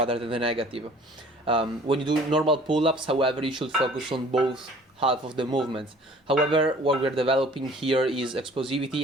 than the negative. When you do normal pull-ups, however, you should focus on both half of the movements. However, what we're developing here is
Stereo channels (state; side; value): normal; both; correlation 0.51